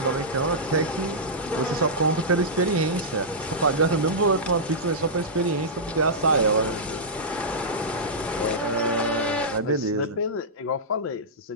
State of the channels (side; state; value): both; normal; correlation -0.12